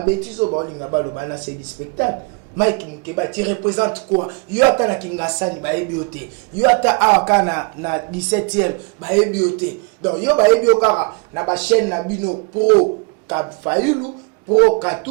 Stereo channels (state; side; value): quieter; left; 31.7 dB